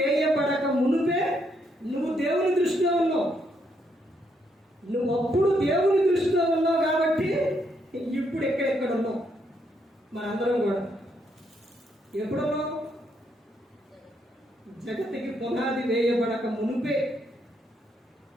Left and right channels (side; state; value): both; normal; correlation 0.75